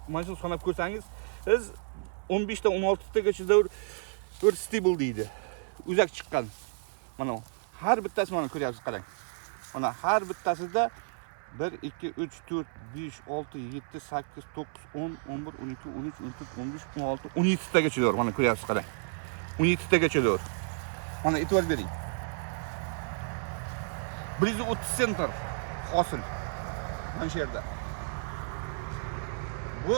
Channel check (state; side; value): silent; left; 57 dB below the other